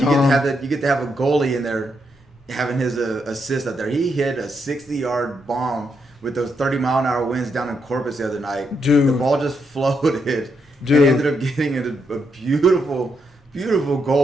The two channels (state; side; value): normal; both; correlation 0.80